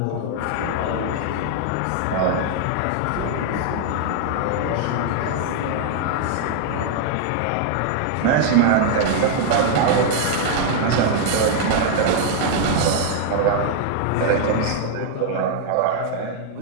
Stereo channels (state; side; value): different; both; correlation -0.01